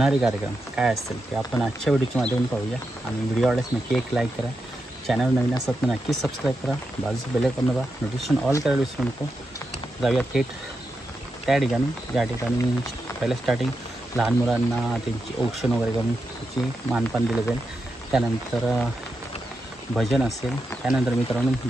कार्यक्रम काय असतील ते आपण आजच्या व्हिडिओच्या माध्यमातून पाहूया. आणि व्हिडिओ आवडल्यास नक्की एक लाईक करा, चॅनल नवीन असतात तर नक्कीच सबस्क्राईब करा, बाजूचं बेल आयकॉन दाबा, नोटिफिकेशन ऑल करायला विसरू नको. जाऊया थेट त्या ठिकाणी ज्या ठिकाणी पहिलं स्टार्टिंग लहान मुलांना त्यांची औक्षण वगैरे करून त्याची मानपान दिलं जाईल. त्यानंतर भजन असेल, त्यानंतर मित्रांनो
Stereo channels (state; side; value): normal; both; correlation 0.87